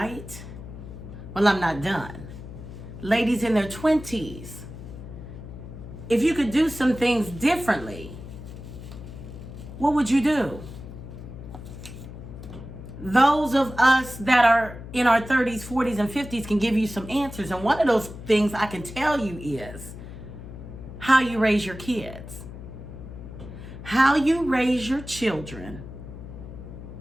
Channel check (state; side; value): noise; left; hum, 12 dB below the sound